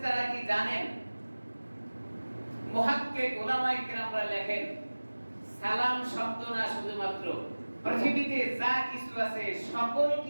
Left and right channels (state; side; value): inverted; both; correlation -1.00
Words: কি জানেন? মুহাক্কিক উলামায়ে কিরামরা লেখেন, সালাম শব্দ না শুধুমাত্র পৃথিবীতে যা কিছু আছে সকল